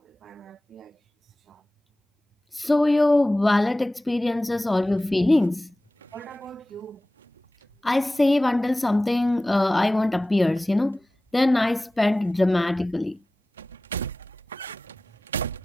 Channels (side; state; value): both; normal; correlation 0.97